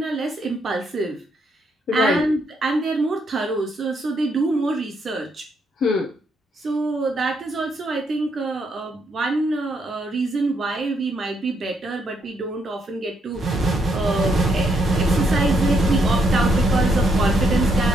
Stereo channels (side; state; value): both; normal; correlation 0.75